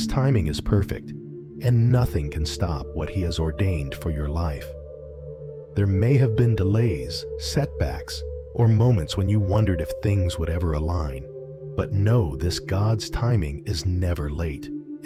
timing is perfect, and nothing can stop what He has ordained for your life. There may have been delays, setbacks, or moments when you wondered if things would ever align. But know this: God's timing is never late.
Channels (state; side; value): identical; both; correlation 1.00